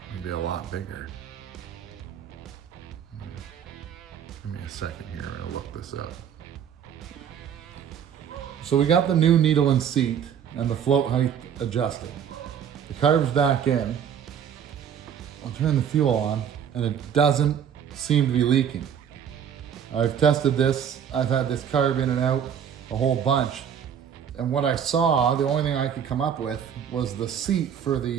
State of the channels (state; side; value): quieter; left; 8.4 dB